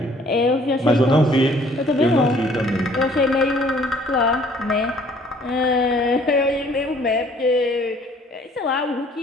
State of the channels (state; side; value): normal; both; correlation 0.58